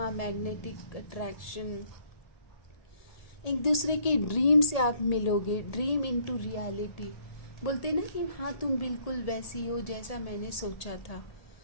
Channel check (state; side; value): late; right; 1.8 ms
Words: मैग्नेटिक अट्रैक्शन, एक दूसरे के ड्रीम से आप मिलोगे, ड्रीम इनटू रियलिटी। बोलते ना कि हाँ तुम बिल्कुल वैसी हो जैसा मैंने सोचा था,